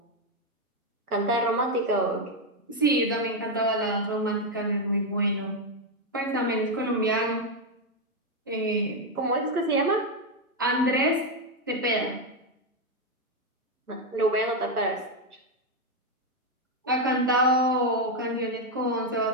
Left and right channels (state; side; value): normal; both; correlation 0.04